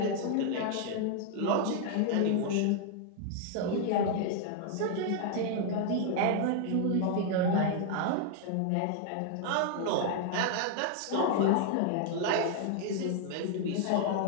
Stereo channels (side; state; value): both; different; correlation 0.00